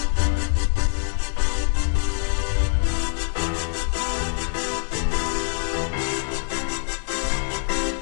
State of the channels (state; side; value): silent; right; digital silence